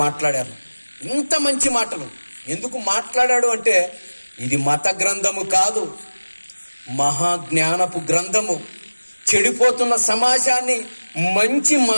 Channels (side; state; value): both; inverted; correlation -1.00